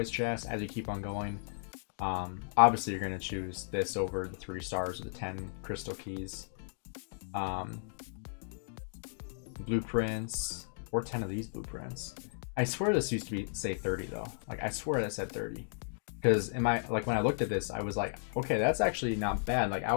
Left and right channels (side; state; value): right; silent; digital silence